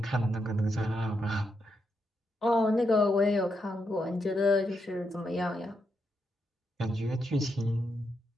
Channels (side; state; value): both; normal; correlation 0.82